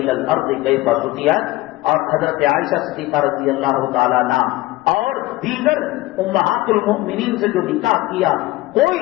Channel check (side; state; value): right; quieter; 18.5 dB